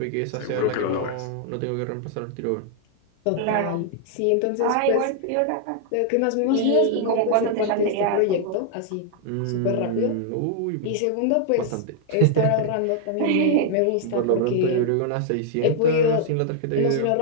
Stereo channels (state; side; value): different; both; correlation -0.01